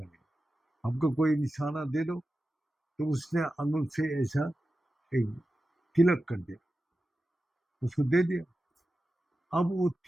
हमको कोई निशाना दे दो। तो उसने अंगुल से ऐसा एक तिलक कर दिया, उसको दे दिया। अब वो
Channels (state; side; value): normal; both; correlation 0.93